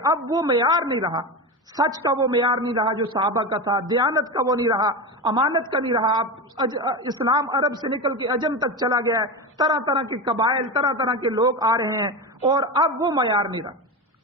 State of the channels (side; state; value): both; normal; correlation 0.20